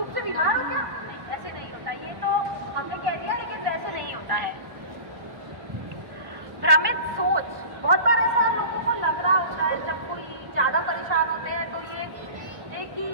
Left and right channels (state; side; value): late; left; 1.1 ms